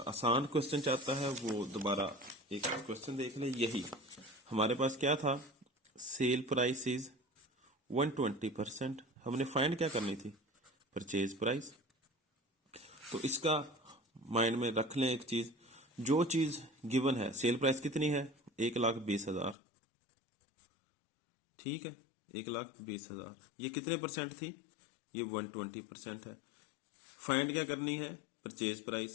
आसान क्वेश्चन चाहता है, वो दोबारा एक क्वेश्चन देख ले। यही हमारे पास क्या था, सेल प्राइस इज 120%, हमने फाइंड क्या करनी थी, परचेज प्राइस। तो इसका माइंड में रख लें एक चीज, जो चीज गिवन है, सेल प्राइस कितनी है 1,20,000, ठीक है, 1,20,000। ये कितने परसेंट थी, ये 120% है। फाइंड क्या करनी है, परचेज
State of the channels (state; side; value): drops out; right; at 19.6 s